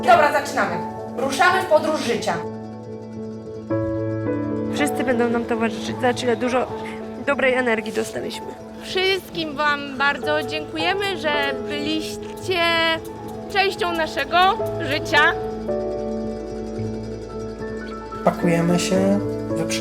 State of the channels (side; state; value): both; identical; correlation 1.00